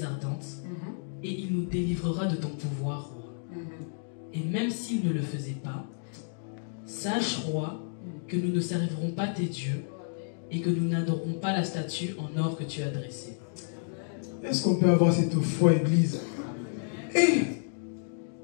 ardente, et il nous délivrera de ton pouvoir, roi. Et même s'il ne le faisait pas, sache, roi, que nous ne servirons pas tes dieux, et que nous n'adorerons pas la statue en or que tu as dressée. Est-ce qu'on peut avoir cette foi, Église?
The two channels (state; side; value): silent; right; digital silence